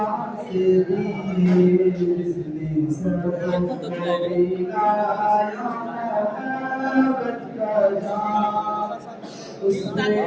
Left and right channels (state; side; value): identical; both; correlation 1.00